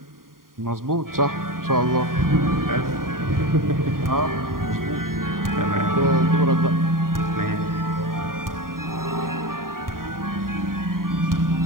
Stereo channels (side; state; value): left; late; 0.91 ms